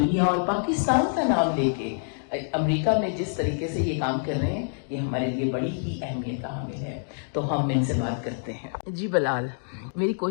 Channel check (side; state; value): right; silent; digital silence